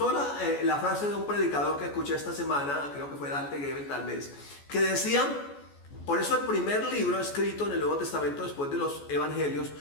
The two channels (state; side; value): late; right; 14 ms